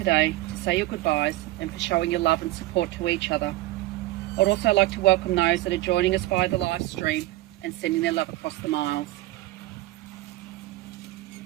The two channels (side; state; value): left; quieter; 17.4 dB